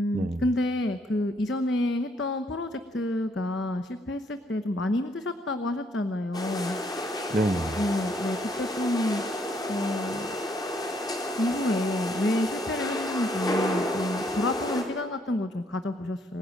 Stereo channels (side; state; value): both; normal; correlation 0.69